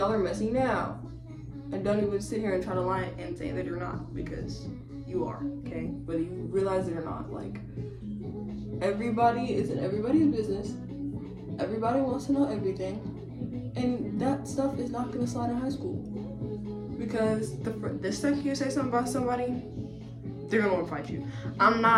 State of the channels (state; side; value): identical; both; correlation 1.00